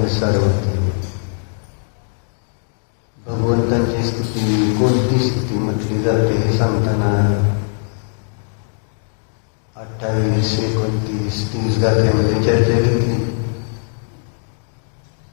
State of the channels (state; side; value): silent; right; digital silence